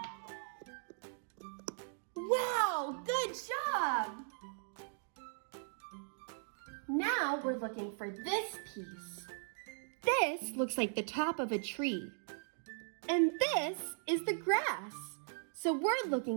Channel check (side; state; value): left; silent; digital silence